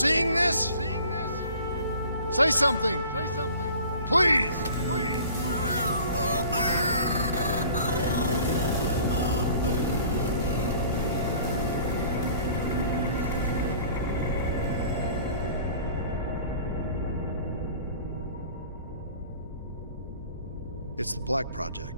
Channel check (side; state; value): both; inverted; correlation -0.48